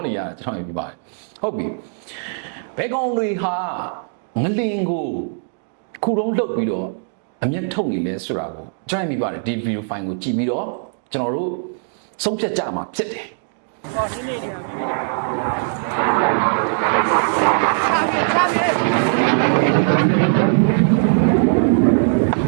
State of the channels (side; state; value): left; silent; digital silence